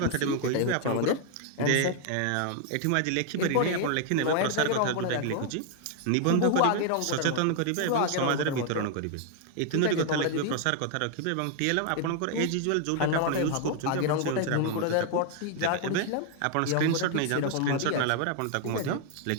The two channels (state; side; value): different; both; correlation 0.00